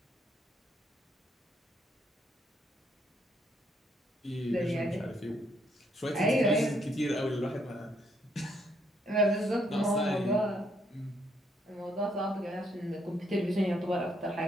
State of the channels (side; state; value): both; normal; correlation 0.72